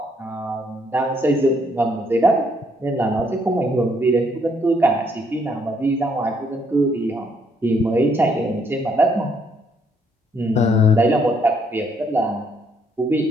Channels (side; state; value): both; normal; correlation 0.70